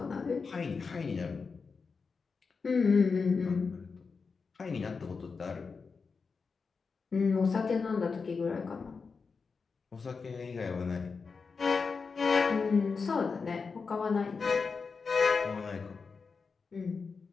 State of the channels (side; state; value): right; quieter; 4.9 dB